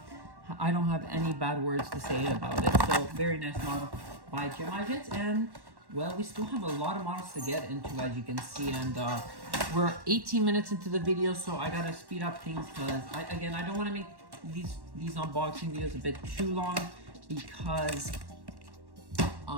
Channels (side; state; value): left; late; 1.1 ms